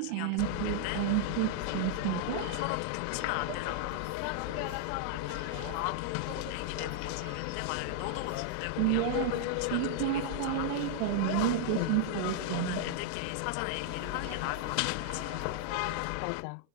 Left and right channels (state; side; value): different; both; correlation -0.01